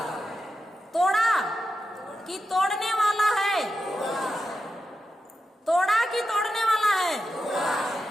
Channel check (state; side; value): normal; both; correlation 0.89